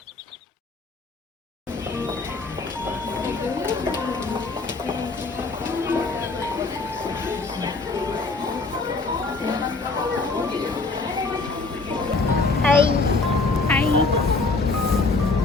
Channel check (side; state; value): right; quieter; 3.7 dB